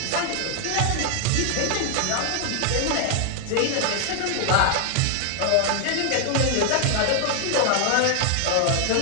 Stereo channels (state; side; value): different; both; correlation 0.00